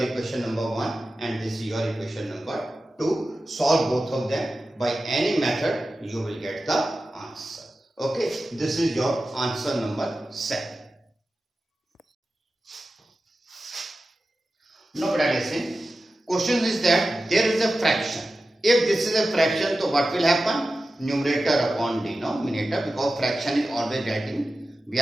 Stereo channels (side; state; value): both; normal; correlation 0.94